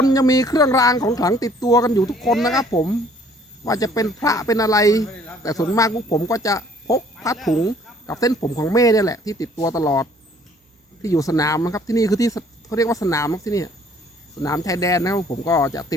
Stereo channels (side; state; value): both; normal; correlation 0.58